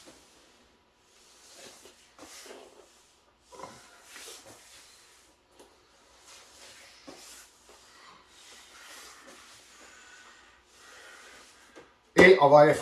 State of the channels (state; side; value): identical; both; correlation 1.00